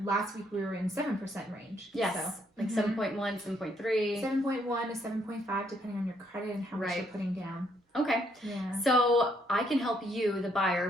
last week we were in 7% range. Yes, so, like 7.1, 7.3. 7.1 to 7.5 depending on your credit and how much you're putting down. Okay. Yeah. So I can help you, the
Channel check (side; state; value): both; normal; correlation 0.71